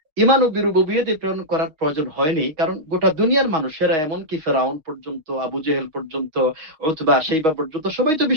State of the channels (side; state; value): left; late; 6.3 ms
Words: ঈমান ও বিরুবুবিয়্যাতে প্রেরণ করার প্রয়োজন হয়নি, কারণ গোটা দুনিয়ার মানুষেরা, এমনকি ফেরাউন পর্যন্ত, আবু জেহেল পর্যন্ত, উতবা, শাইবা পর্যন্ত সবাই তো